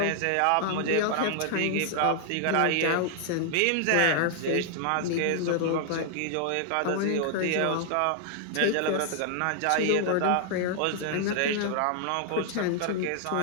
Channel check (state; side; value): different; both; correlation 0.00